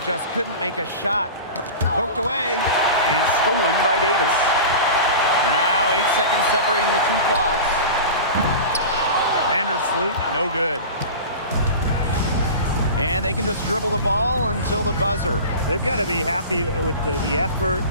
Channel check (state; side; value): inverted; both; correlation -0.32